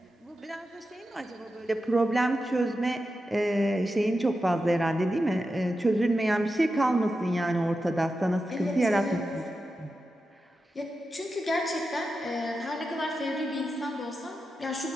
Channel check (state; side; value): normal; both; correlation 0.90